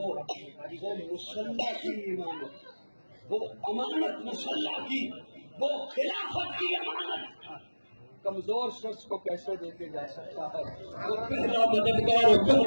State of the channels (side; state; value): both; inverted; correlation -1.00